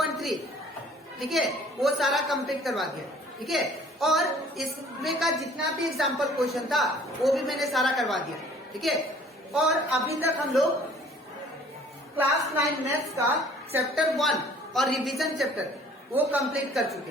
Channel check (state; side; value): normal; both; correlation 0.53